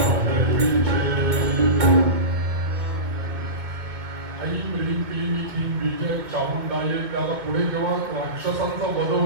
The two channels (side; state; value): left; late; 2.3 ms